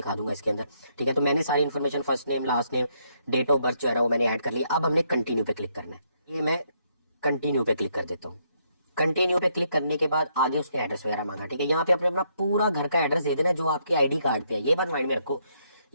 दूंगा इसके अंदर, ठीक है। तो मैंने सारी information, first name, last name, date of birth जो है वो मैंने ऐड कर लिया। अब हमने कंटिन्यू पे क्लिक करना है, ये मैं कंटिन्यू पे क्लिक कर देता हूँ। कंटिन्यू पे क्लिक करने के बाद आगे उसने एड्रेस वगैरह मांगा, ठीक है। यहाँ पे अपने अपना पूरा घर का एड्रेस दे देना जो आपके आईडी कार्ड पे है, ये बात माइंड में रखो।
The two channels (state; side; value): inverted; both; correlation -0.74